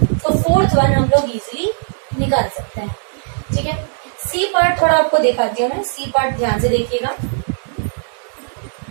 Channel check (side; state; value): left; silent; digital silence